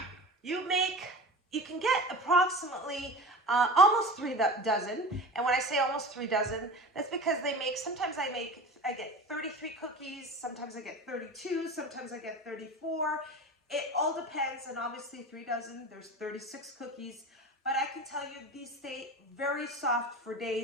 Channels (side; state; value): both; normal; correlation 0.33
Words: You can get approximately almost 3 dozen. And when I say almost 3 dozen, that's because sometimes I get 33 cookies, sometimes I get 32, sometimes I get 34. It all depends, and obviously 3 dozen, there's 36 cookies. But I can tell you these stay very soft for